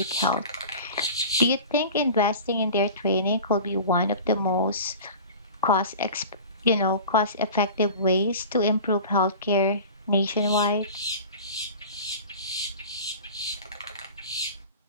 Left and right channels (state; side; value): inverted; both; correlation -0.37